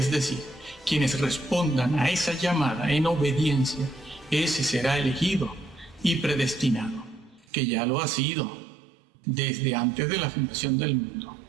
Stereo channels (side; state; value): left; drops out; at 7.5 s